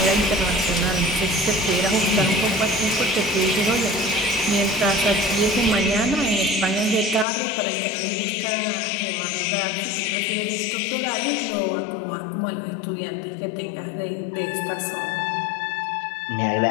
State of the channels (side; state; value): right; drops out; at 7.2 s